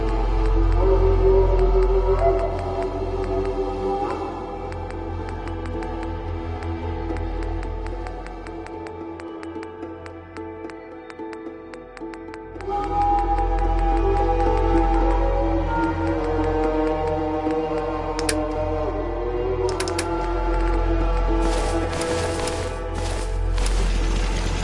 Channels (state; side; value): identical; both; correlation 1.00